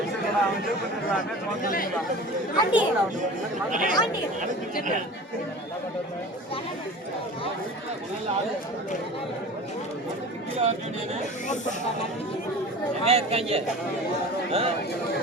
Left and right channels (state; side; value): normal; both; correlation 0.37